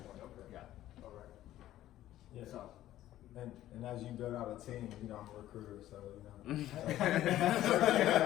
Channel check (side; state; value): right; quieter; 13.7 dB